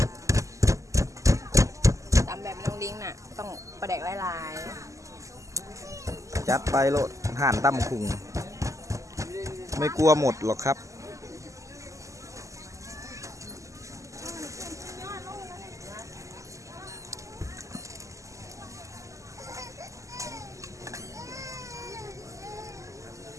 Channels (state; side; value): late; left; 0.16 ms